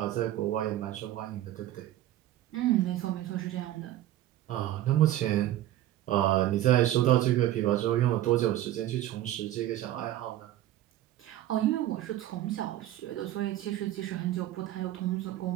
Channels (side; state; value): left; quieter; 13.6 dB